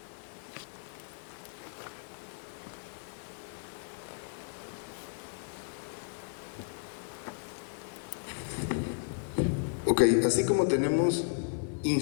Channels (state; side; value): silent; right; 55 dB below the other